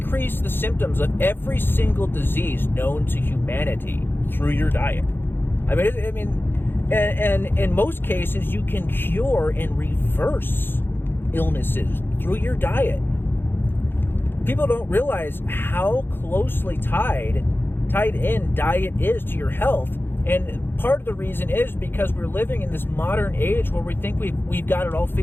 the symptoms of every single disease known to humanity through your diet. And in most cases, you can cure and reverse illnesses through your diet. People don't realize how closely tied tied in diet is to your health. And part of the reason is because we're living in this modern age where we think we've got it all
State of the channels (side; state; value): right; late; 0.10 ms